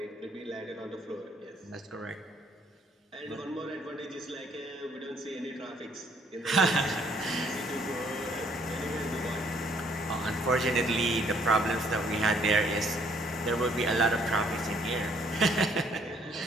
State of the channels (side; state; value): both; normal; correlation 0.64